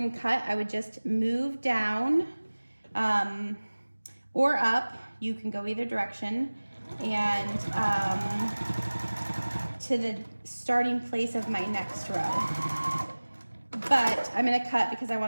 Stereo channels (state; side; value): inverted; both; correlation -1.00